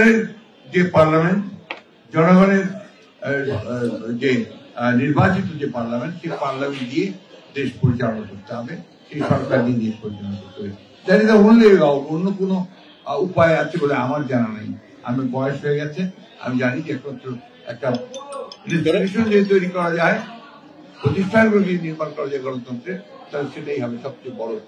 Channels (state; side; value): identical; both; correlation 1.00